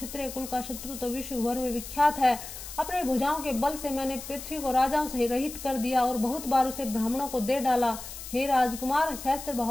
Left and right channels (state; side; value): noise; left; hiss, 11 dB below the sound